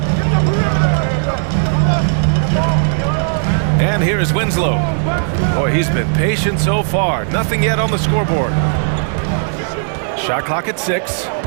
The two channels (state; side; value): silent; left; digital silence